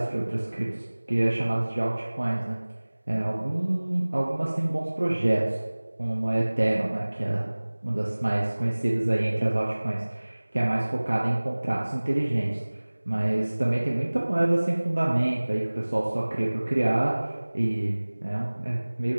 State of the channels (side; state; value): both; inverted; correlation -1.00